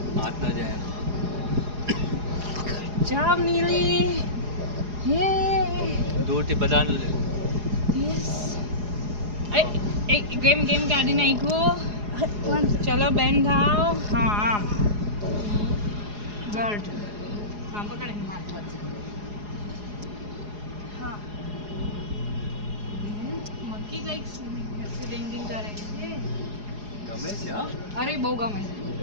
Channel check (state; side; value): late; left; 4.8 ms